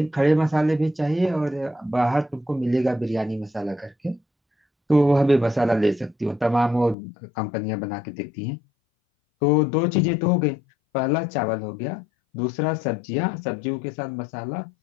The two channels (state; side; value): drops out; right; at 7.0 s